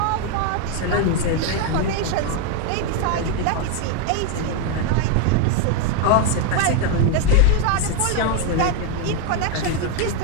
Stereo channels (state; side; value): different; both; correlation 0.01